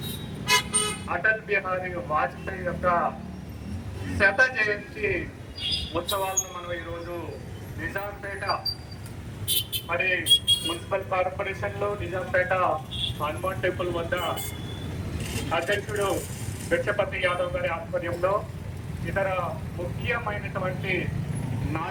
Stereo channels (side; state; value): both; identical; correlation 1.00